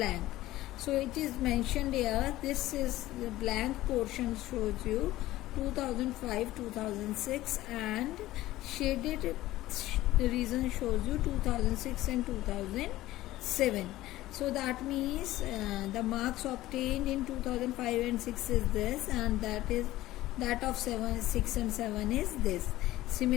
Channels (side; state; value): right; quieter; 16.2 dB